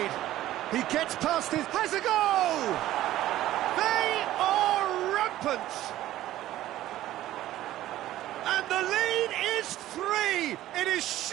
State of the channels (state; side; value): quieter; left; 14.3 dB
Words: He gets past his... Has a goal! They are rampant! And the lead is 3! It is